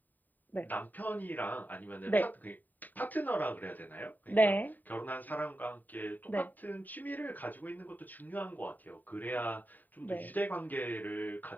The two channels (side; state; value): right; late; 0.087 ms